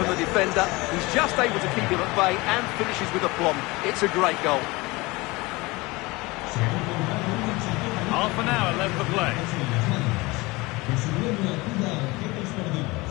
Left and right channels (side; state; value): right; quieter; 23.1 dB